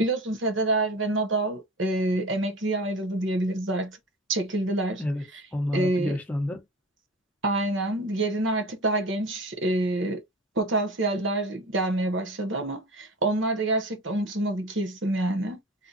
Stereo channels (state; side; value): normal; both; correlation 0.35